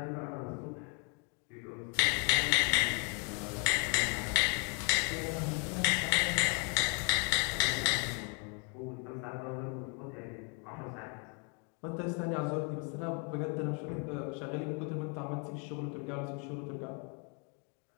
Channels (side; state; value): right; quieter; 36.9 dB